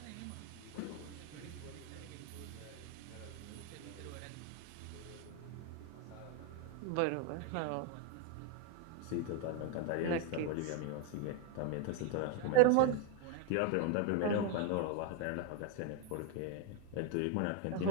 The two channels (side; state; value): both; different; correlation 0.01